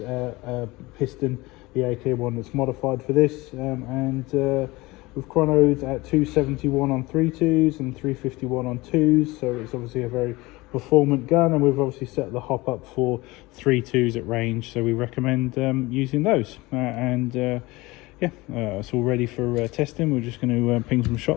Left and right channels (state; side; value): quieter; right; 21.6 dB